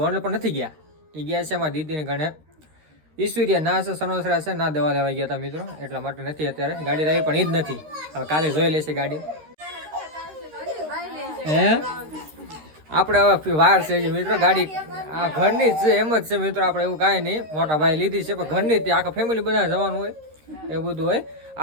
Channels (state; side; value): late; left; 13 ms